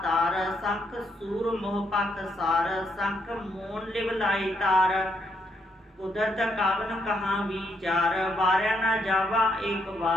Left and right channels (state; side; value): normal; both; correlation 0.76